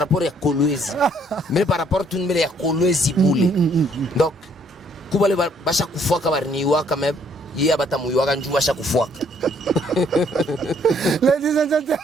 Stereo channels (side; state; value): both; normal; correlation 0.65